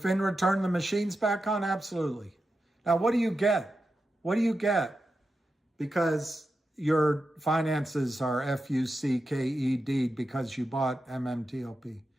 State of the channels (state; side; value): normal; both; correlation 0.90